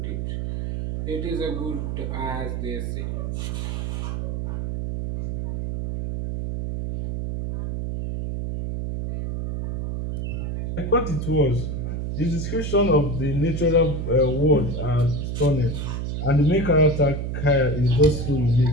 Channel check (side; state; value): right; noise; hum, 3 dB below the sound